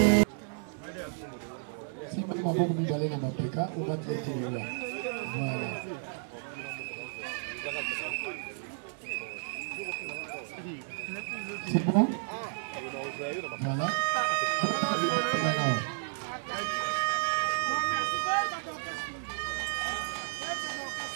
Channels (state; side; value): silent; left; digital silence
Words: maboko mibale na mapeka obatietelela c'est bon? Voilà.